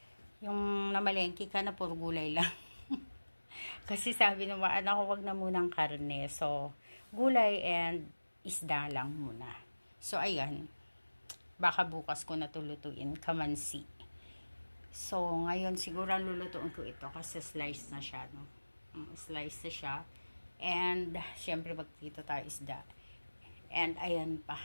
Yung namalengke ka na puro gulay lang. Kasi sabi ng mga anak ko, wag na munang karne. So, gulay and isda lang muna. So, ayan. Baka bukas ko na tulutuin. Kamansi. So, ngayon siguro lulutuin ko ito kasi slice na siya, no? Slice na siya. And, syempre, magtito tayo isda. And, ayan pa.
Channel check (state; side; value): inverted; both; correlation -1.00